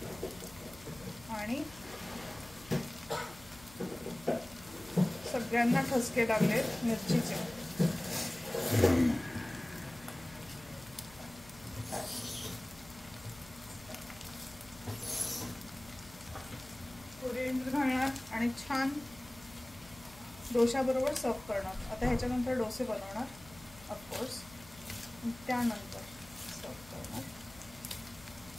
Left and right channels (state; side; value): noise; left; hum, 21 dB below the sound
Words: आणि सगळ्यांना ठसके लागलेत मिरचीचे. कोरिएंडर घालणार आणि छान डोशाबरोबर सर्व करणार. आता ह्याच्यानंतर डोसे बनवणार ऑफकोर्स, त्यानंतर सर्व करणार.